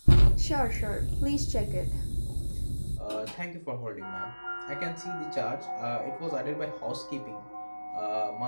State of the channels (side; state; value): both; inverted; correlation -1.00